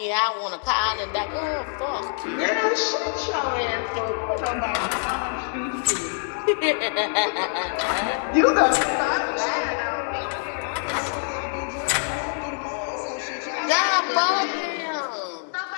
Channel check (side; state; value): right; silent; 62 dB below the other